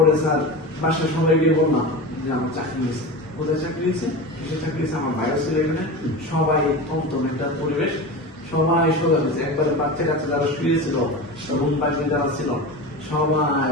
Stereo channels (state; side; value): normal; both; correlation 0.28